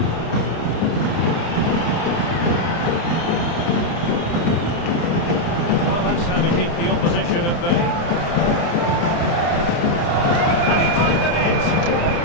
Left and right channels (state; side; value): late; right; 29 ms